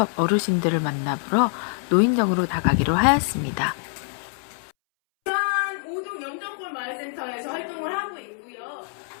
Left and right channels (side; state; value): right; silent; 62 dB below the other